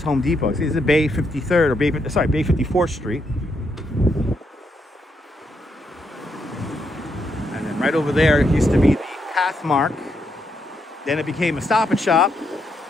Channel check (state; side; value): normal; both; correlation 0.79